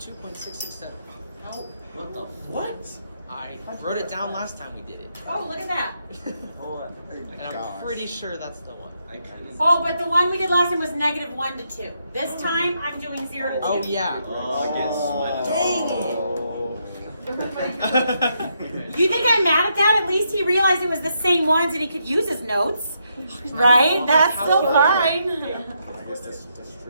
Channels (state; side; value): inverted; both; correlation -0.78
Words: What the what? I wrote it down last time we did it. Oh, look at that. Hold on. And I'm pretty sure that's the one. I kind of. Oh, but the one we did last time was -1 to 2. This time, I'm doing 0 to 2. Oh, yeah. You think I'm mad at that? At least he realized it was the same ones and he could use his notes. Right? That's still fine. I guess that's